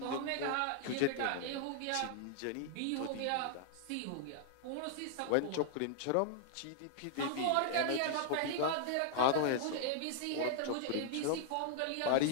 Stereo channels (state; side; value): different; both; correlation -0.01